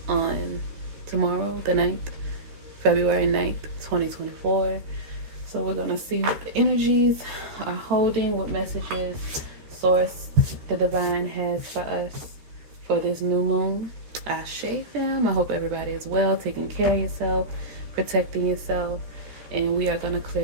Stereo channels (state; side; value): late; left; 14 ms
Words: on tomorrow, the 9th, February 9th, 2024. So we're gonna see what the energies are holding, what messages source the divine has for us for this new moon. Ashe, fam. I hope everybody is well, taking care of yourself, protecting yourself, and we are going to